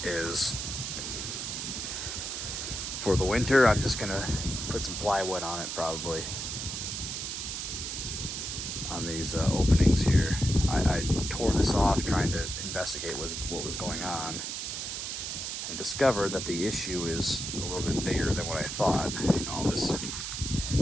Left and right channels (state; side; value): noise; right; hiss, 4 dB below the sound